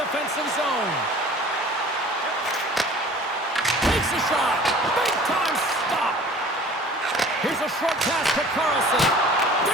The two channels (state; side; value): normal; both; correlation 0.46